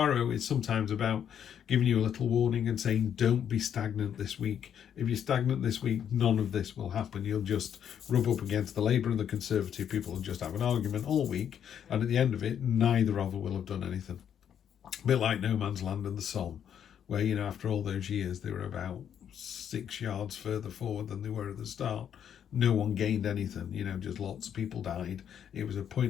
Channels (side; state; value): right; quieter; 8.9 dB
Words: is sometimes about giving you a little warning and saying, don't be stagnant this week. If you're stagnant this week, none of this will happen. You'll just rub up against the Labour and the Conservative people and just have an argument all week, and at the end of it, neither of them will have done anything. A bit like No Man's Land and the Somme, where, you know, after all those years, they were about 6 yards further forward than they were at the start. No one gained anything, you know, just lots of people died. It was a